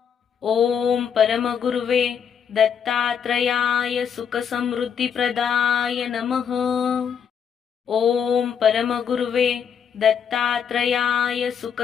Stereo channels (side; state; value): right; quieter; 7.5 dB